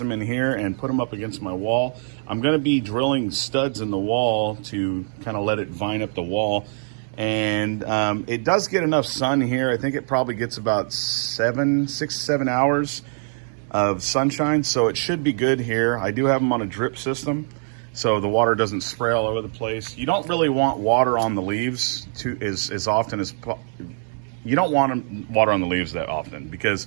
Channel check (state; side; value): silent; left; digital silence